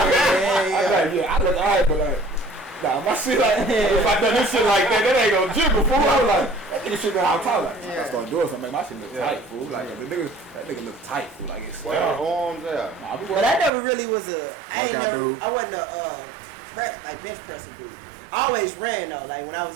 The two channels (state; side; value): drops out; left; at 13.7 s